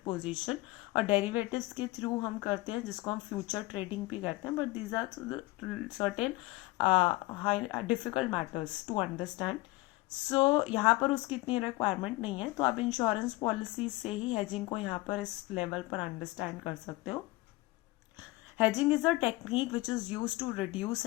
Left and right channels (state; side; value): quieter; right; 20.7 dB